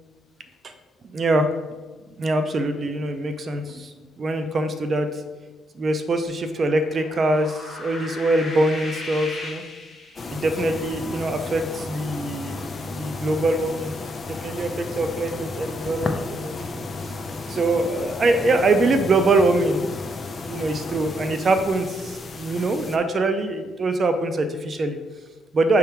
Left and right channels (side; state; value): both; normal; correlation 0.77